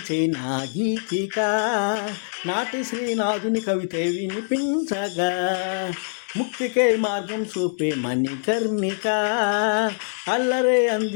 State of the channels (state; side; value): silent; right; digital silence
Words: నా గీతిక, నాటి శ్రీనాథుని కవిత వినిపించగా, ముక్తికే మార్గం చూపే మణికర్ణిక, అల్లరే